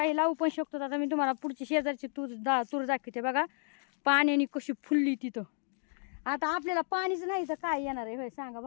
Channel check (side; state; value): right; silent; 56 dB below the other